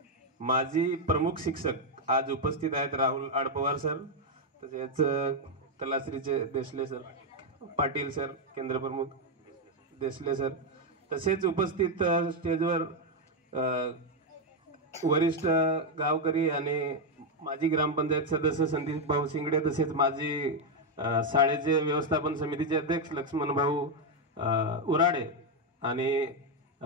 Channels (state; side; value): normal; both; correlation 0.03